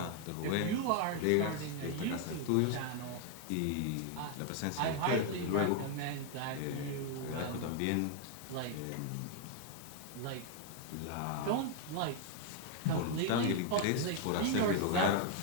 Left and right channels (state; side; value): different; both; correlation 0.00